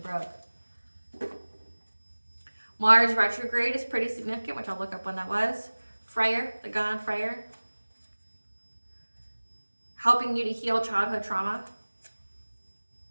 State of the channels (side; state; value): both; inverted; correlation -1.00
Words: broke. Mars retrograde is pretty significant, which I'll look up when that was. Freyr, the god Freyr. helping you to heal childhood trauma.